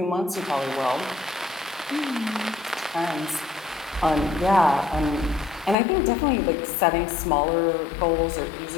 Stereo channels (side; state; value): right; drops out; at 5.8 s